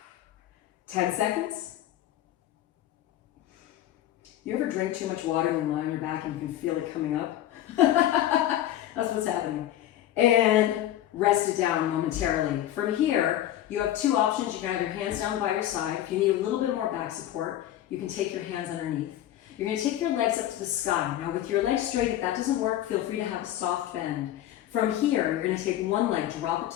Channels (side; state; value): right; quieter; 12.8 dB